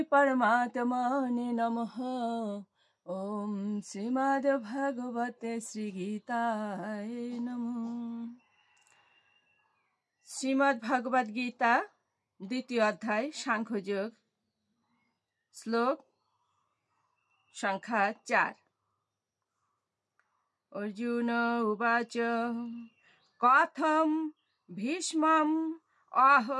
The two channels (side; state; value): both; identical; correlation 1.00